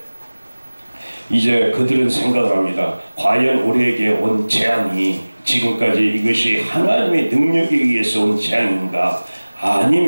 이제 그들은 생각을 합니다. 과연 우리에게 온 재앙이 지금까지 이것이 하나님의 능력에 의해서 온 재앙인가,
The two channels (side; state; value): both; inverted; correlation -1.00